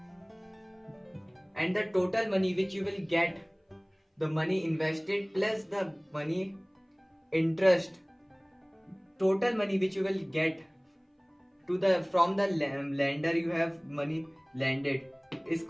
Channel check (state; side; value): identical; both; correlation 1.00